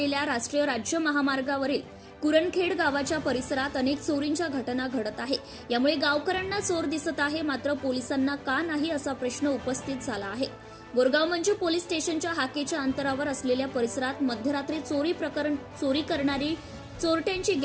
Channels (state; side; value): identical; both; correlation 1.00